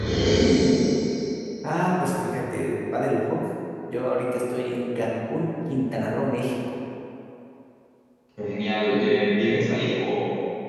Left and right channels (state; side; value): identical; both; correlation 1.00